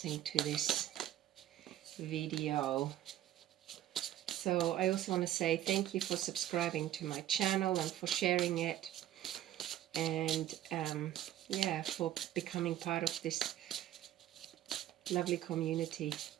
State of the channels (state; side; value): quieter; left; 12.5 dB